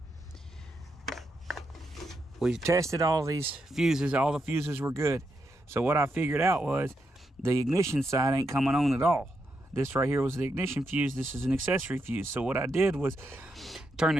we tested all these fuses. All the fuses were good. So what I figured out was, the ignition side ain't coming on at all. This right here was the ignition fuse. This is an accessory fuse. So what I did was turn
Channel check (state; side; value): normal; both; correlation 0.83